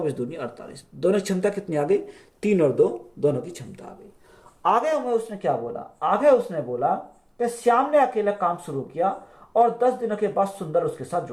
दूनी 48, दोनों की क्षमता कितनी आ गई, 3 और 2 दोनों की क्षमता आ गई। आगे हमें उसने क्या बोला, आगे उसने बोला कि श्याम ने अकेला काम शुरू किया और 10 दिनों के बाद सुंदर उसके साथ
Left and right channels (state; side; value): identical; both; correlation 1.00